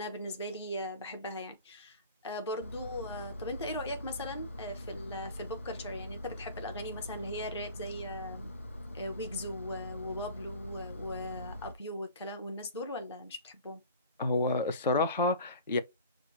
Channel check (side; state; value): both; inverted; correlation -0.42